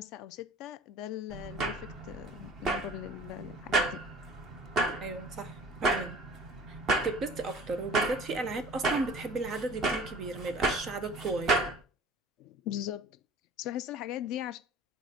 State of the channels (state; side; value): normal; both; correlation 0.45